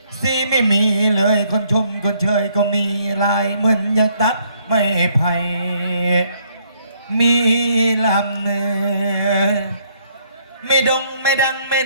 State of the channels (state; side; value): inverted; both; correlation -0.68